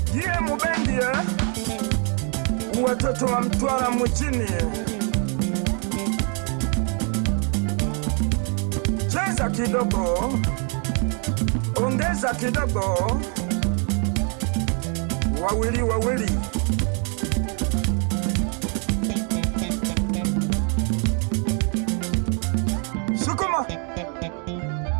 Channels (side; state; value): left; quieter; 38.9 dB